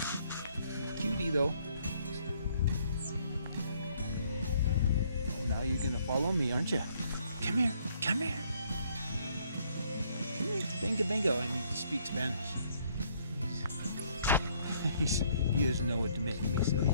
Cutie, though. Now you're going to follow me, aren't you? Come here. Come here. Come here. Bingo, bingo. I need to speak Spanish. He doesn't know what to make me, so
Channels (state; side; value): inverted; both; correlation -0.66